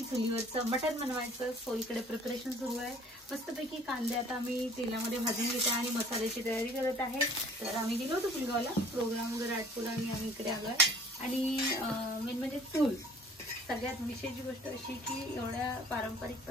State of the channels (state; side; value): normal; both; correlation 0.52